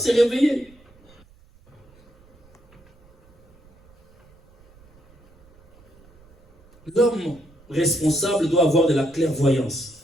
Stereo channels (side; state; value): right; noise; rumble, 29 dB below the sound